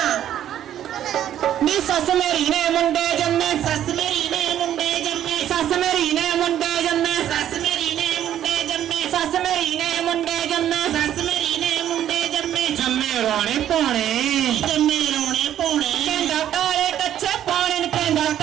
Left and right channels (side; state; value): left; quieter; 11.0 dB